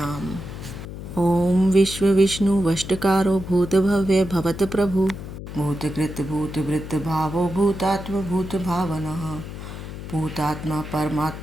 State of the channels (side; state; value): left; noise; hum, 10 dB below the sound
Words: ओम विश्व विष्णु वष्टकारो भूत भव्य भवत प्रभु भूतकृत भूत वृत्त भावो भूतात्म भूत भावनः भूतात्मा